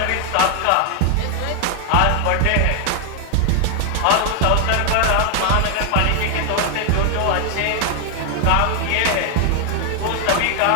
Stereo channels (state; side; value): different; both; correlation 0.00